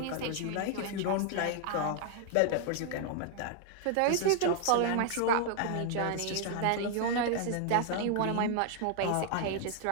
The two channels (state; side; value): different; both; correlation 0.00